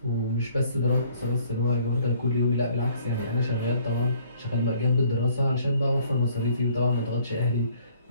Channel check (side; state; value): both; inverted; correlation -0.60